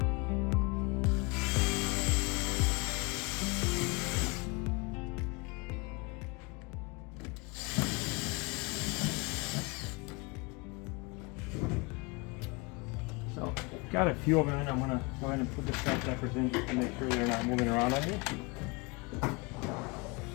So, got a few of them, and I'm gonna go ahead and put the strap zappers in to make sure they're not moving around on you.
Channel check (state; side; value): quieter; right; 27.8 dB